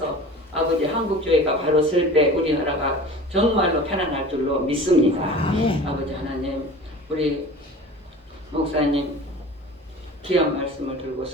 아버지 한국교회가 바로 설 때 우리나라가 정말로 편안할 줄로 믿습니다. 아버지 하나님 우리 목사님 귀한 말씀을 들고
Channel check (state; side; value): normal; both; correlation 0.39